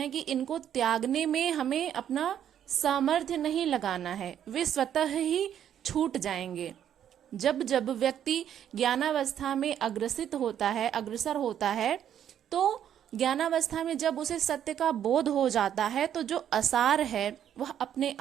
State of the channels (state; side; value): quieter; left; 9.9 dB